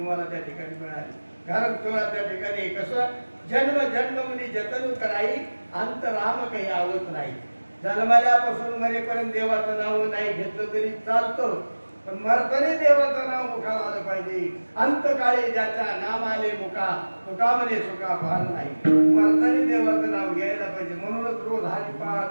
त्या ठिकाणी मिळाली, कारण तुम्हाला त्या ठिकाणी कसं जन्म जन्म मुनी जतन कराई अंत राम काही आवत नाही. जन्मल्यापासून मरेपर्यंत देवाचं नाव नाही घेतलं तरी चालतं, पण मरताना देवाचं नाव मुखाला आलं पाहिजे. अंतकाळी ज्याच्या नाम आले मुखा तुका म्हणे सुखा फार नाही. मरताना देवाचं नाव घ्यायला पाहिजे. म्हणूनच रोज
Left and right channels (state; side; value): inverted; both; correlation -1.00